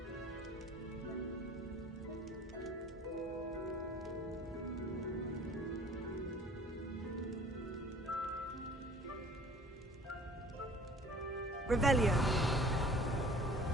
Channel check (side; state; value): both; normal; correlation 0.49